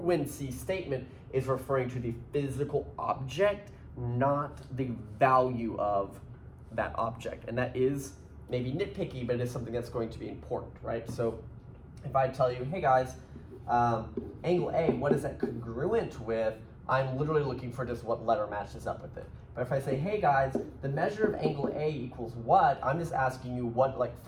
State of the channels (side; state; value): both; identical; correlation 1.00